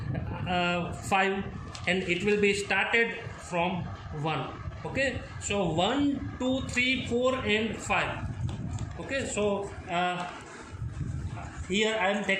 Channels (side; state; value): both; identical; correlation 1.00